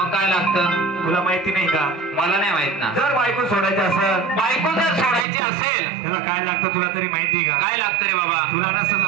काय लागतं तुला माहिती नाही का? मला नाही माहित ना। जर बायको सोडायची असेल बायको जर सोडायची असेल त्याला काय लागतं तुला तरी माहिती का? काय लागतं रे बाबा? तुला नसेल तर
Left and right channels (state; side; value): drops out; left; at 5.2 s